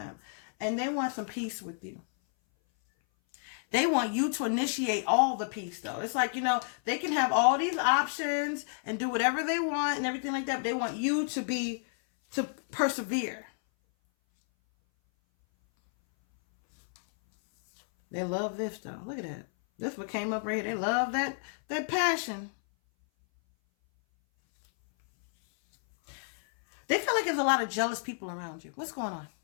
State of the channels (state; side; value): silent; right; 57 dB below the other